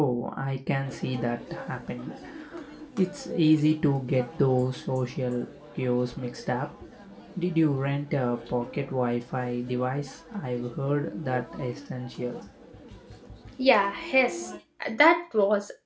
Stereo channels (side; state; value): both; identical; correlation 1.00